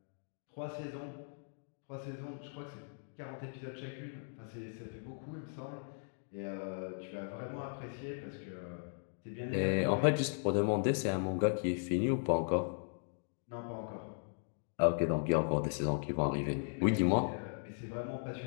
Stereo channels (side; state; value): right; silent; digital silence